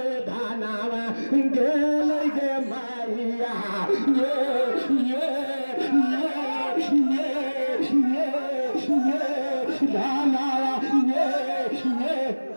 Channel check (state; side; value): inverted; both; correlation -1.00